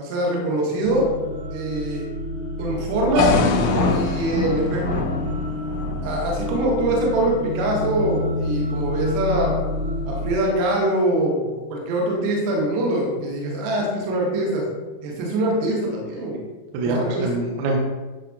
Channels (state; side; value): late; left; 33 ms